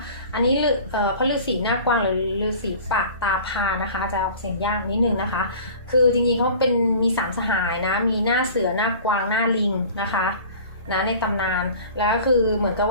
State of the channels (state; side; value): inverted; both; correlation -0.43